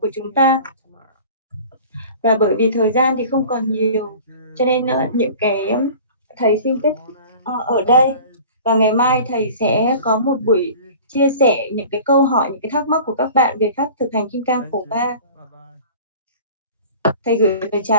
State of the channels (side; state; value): both; inverted; correlation -0.42